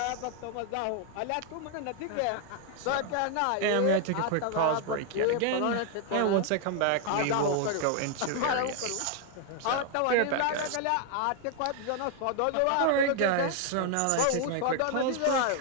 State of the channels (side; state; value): both; different; correlation 0.00